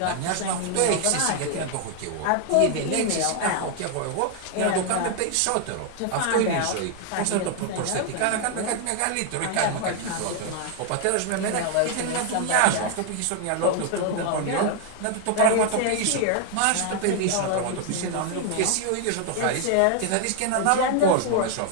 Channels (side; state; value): both; different; correlation 0.00